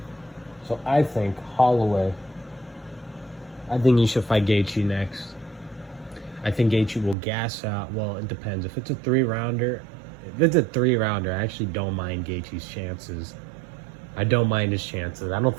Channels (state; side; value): drops out; left; at 7.2 s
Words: So I think Holloway, I think he should fight Gaethje next. I think Gaethje will gas out. Well, it depends. If it's a 3-rounder, I actually don't mind Gaethje's chances. I don't mind his chances. I